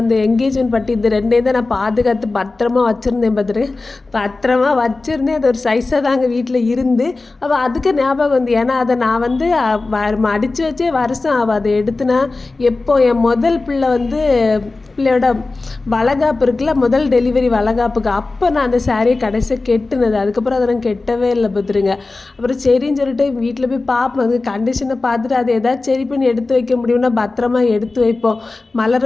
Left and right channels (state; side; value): quieter; right; 3.5 dB